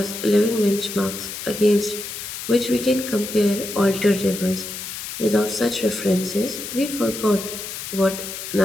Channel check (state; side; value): noise; left; hiss, 8 dB below the sound